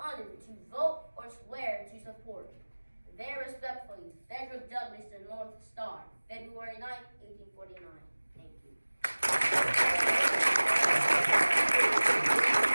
to vote or swear to support. Very respectfully, Frederick Douglass, the North Star, February 9th, 1849. Thank you.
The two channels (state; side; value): inverted; both; correlation -1.00